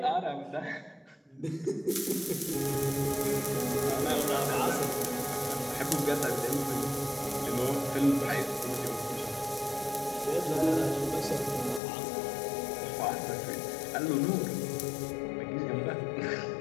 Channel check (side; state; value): right; drops out; at 11.8 s